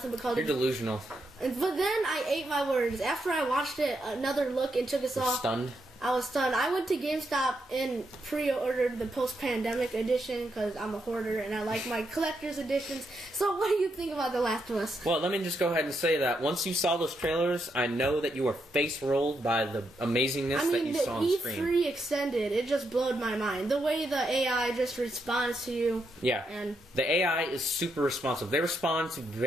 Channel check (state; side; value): normal; both; correlation 0.81